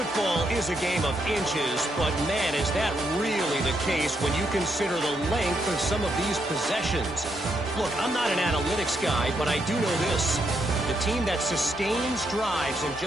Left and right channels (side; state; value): both; normal; correlation 0.78